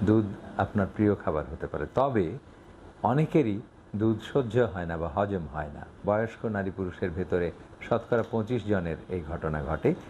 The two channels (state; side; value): identical; both; correlation 1.00